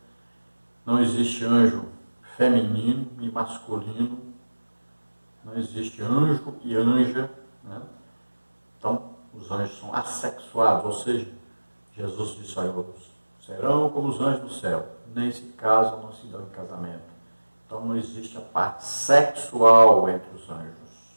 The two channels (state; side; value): inverted; both; correlation -1.00